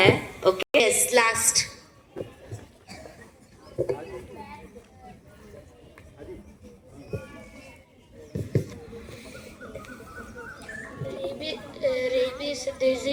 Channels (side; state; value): both; identical; correlation 1.00